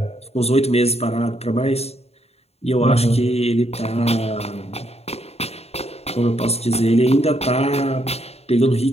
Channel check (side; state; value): right; late; 0.30 ms